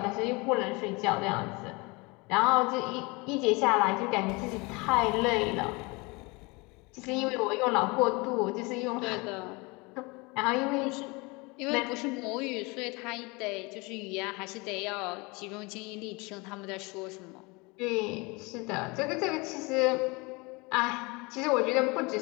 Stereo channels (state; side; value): quieter; right; 26.5 dB